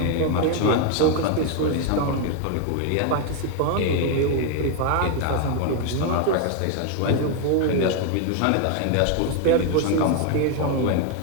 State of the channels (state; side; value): different; both; correlation 0.01